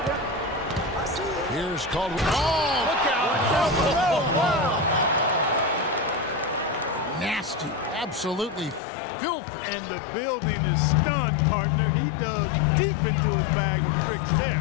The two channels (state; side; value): drops out; right; at 8.8 s